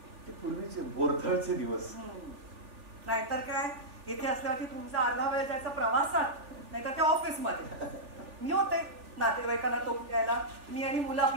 ते पूर्वीचे बोरथळचे दिवस. नाहीतर काय इथे असल्यावरती तुमचा अर्धा वेळ जायचा प्रवासात नाहीतर त्या ऑफिस मध्ये. मी होते नातेवाईकांना तोंड द्यायला. मी आणि मुलं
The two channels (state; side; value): late; left; 3.4 ms